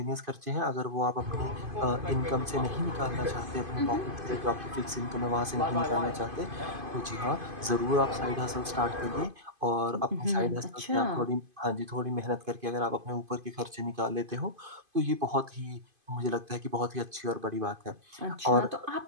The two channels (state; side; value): late; left; 2.5 ms